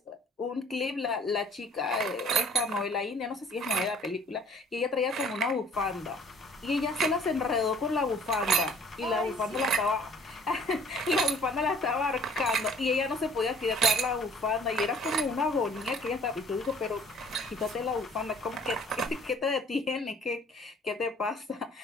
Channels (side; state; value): both; normal; correlation 0.54